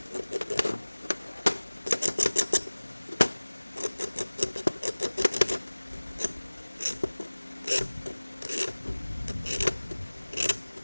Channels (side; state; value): both; inverted; correlation -1.00